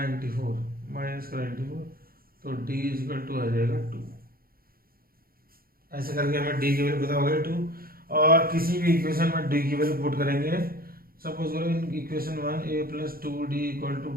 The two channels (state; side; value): late; left; 0.43 ms